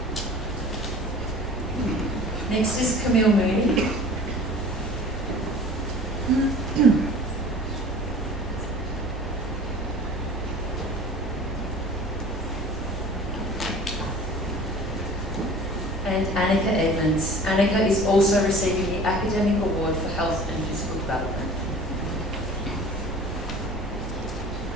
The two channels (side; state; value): both; normal; correlation 0.44